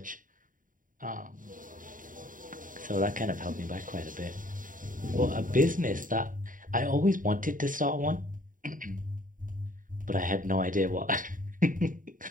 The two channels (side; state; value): left; late; 0.39 ms